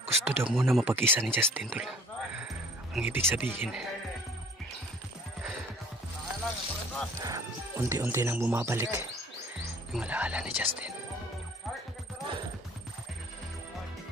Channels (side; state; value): both; normal; correlation 0.53